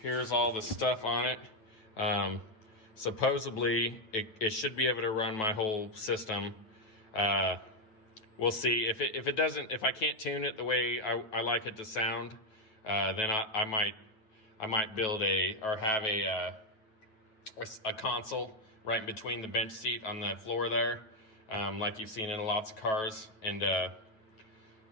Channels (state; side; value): late; right; 9.2 ms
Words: here's all the stuff on it. Supposedly, it should be able to run my whole system. We'll see. If it doesn't, if I can't tune it the way I like it to sound, then I might build have a console right in between the bench seat on the floor there, like you've seen in lots of cars, and